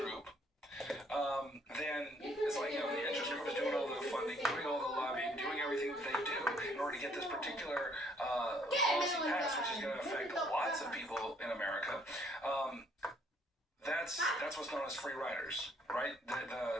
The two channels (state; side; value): normal; both; correlation 0.64